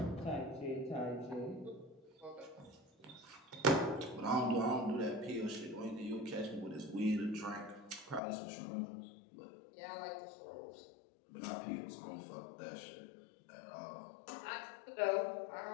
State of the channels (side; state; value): right; drops out; at 8.2 s